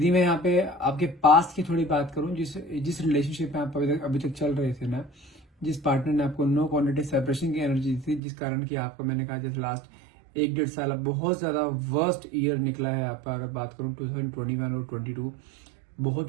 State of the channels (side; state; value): left; drops out; at 8.2 s